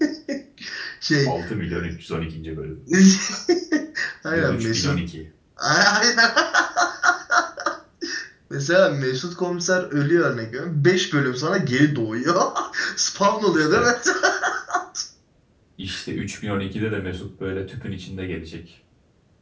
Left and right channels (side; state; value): both; identical; correlation 1.00